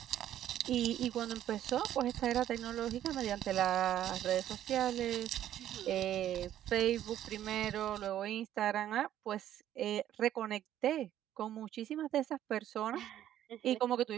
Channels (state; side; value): quieter; left; 11.7 dB